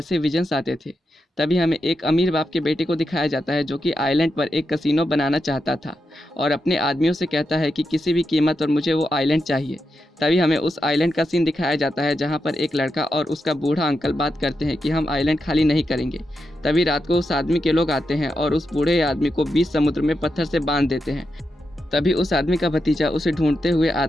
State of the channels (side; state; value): both; normal; correlation 0.86